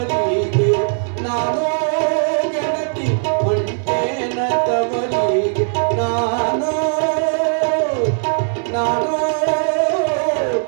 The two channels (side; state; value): left; silent; digital silence